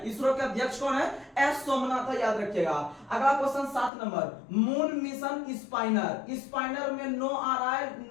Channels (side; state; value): right; drops out; at 3.9 s